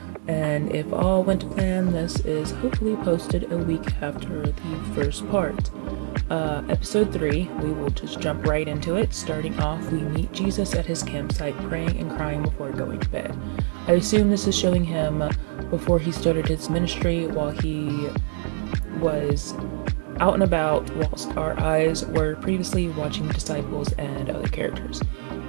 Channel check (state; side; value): silent; left; 62 dB below the other